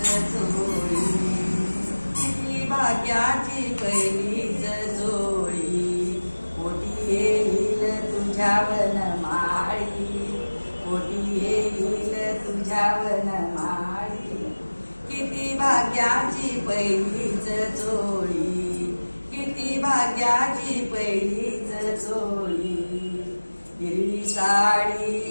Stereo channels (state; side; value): inverted; both; correlation -1.00